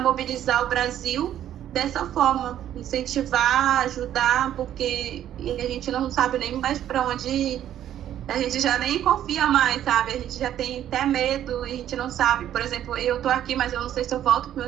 o Brasil dessa forma, incentivar, ajudar, porque a gente não sabe nem mais para onde ir. A gente já nem confia mais, sabe? A gente já tem até medo e a gente não sabe. Por exemplo, eu tô aqui, mas eu não sei se eu volto pro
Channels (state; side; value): quieter; left; 11.2 dB